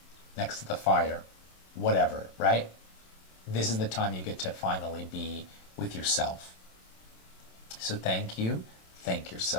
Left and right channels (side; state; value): right; late; 27 ms